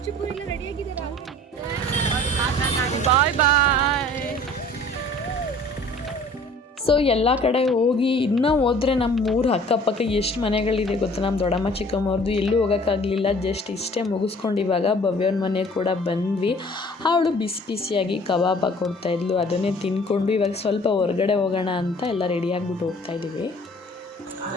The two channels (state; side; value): normal; both; correlation 0.51